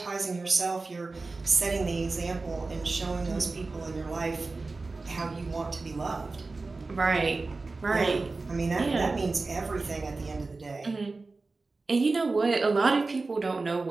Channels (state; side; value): quieter; left; 3.7 dB